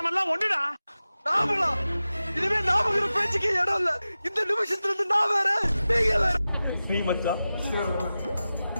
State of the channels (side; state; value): both; inverted; correlation -0.95